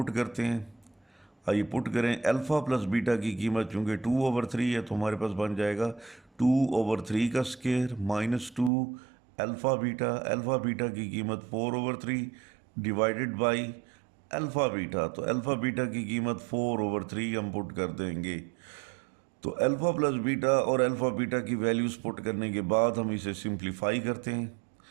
करते हैं। आइए पुट करें। अल्फ़ा प्लस बीटा की कीमत चूँकि 2/3 है तो हमारे पास बन जाएगा 2/3 का square -2 alpha beta. Alpha beta की कीमत 4/3 डिवाइडेड बाई अल्फ़ा बीटा। तो अल्फ़ा बीटा की कीमत 4/3 हम पुट कर देंगे। तो अल्फ़ा प्लस बीटा और अल्फ़ा बीटा की वैल्यूज़ पुट करने के बाद हम इसे सिंप्लीफाई करते हैं।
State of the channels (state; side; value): drops out; left; at 8.7 s